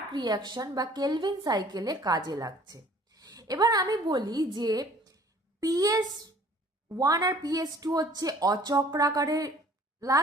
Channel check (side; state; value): both; normal; correlation 0.54